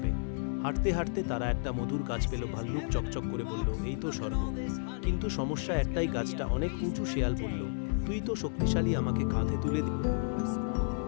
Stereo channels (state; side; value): silent; right; 56 dB below the other